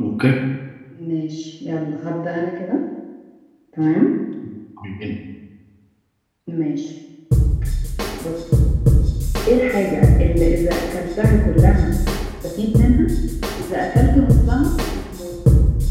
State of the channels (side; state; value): both; identical; correlation 1.00